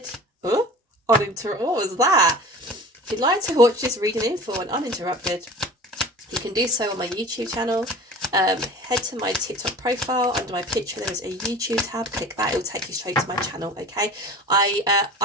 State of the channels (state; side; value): normal; both; correlation 0.39